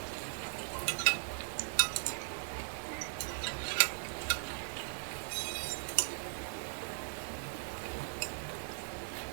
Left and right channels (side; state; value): left; silent; 52 dB below the other